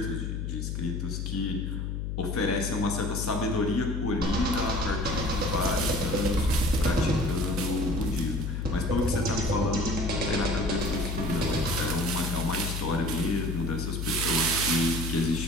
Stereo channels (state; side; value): noise; left; hum, 3 dB below the sound